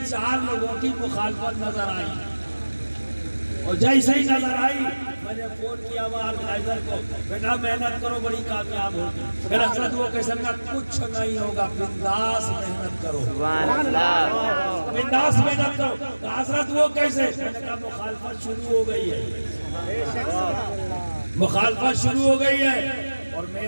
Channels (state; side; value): inverted; both; correlation -1.00